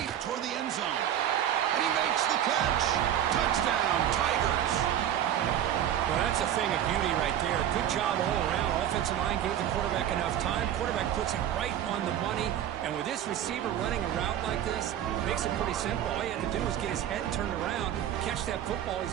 toward the end zone. And he makes the catch. Touchdown, Tigers. Well, that's a thing of beauty right there. Good job all around. Offensive line gave the quarterback enough time. Quarterback puts it right on the money. And with this receiver running a route like this, makes it pretty simple. All you have to do is get his head turned around, catch that football.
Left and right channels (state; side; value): quieter; left; 10.8 dB